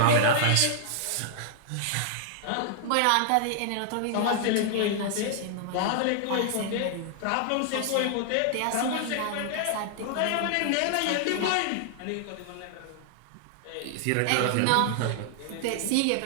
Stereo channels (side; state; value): both; different; correlation -0.01